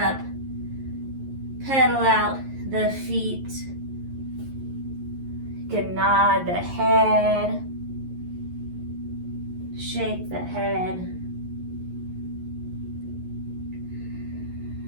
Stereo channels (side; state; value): left; late; 11 ms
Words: pedal out the feet, can nod the head, shake the head.